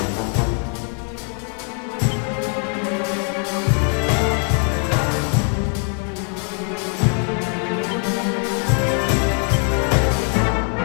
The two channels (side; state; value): right; quieter; 38.8 dB